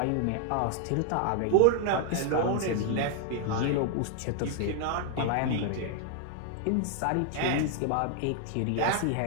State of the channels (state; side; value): different; both; correlation 0.00